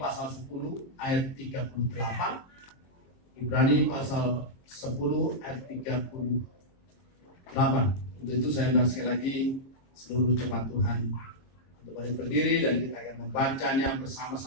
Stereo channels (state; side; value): late; right; 23 ms